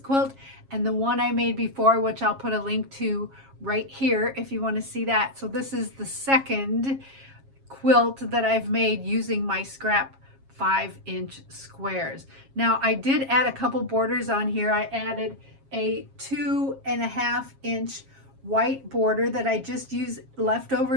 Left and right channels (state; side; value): late; left; 7.4 ms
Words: and the one I made before, which I'll put a link to right here if you want to see that. So this is the second quilt that I've made using my scrap 5-inch squares. Now, I did add a couple borders on here. I added a 2.5-inch white border that I just used